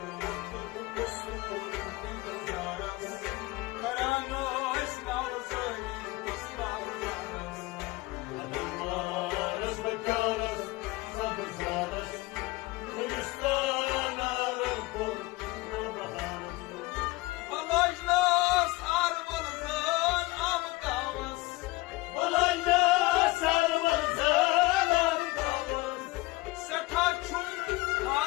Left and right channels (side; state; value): right; quieter; 21.3 dB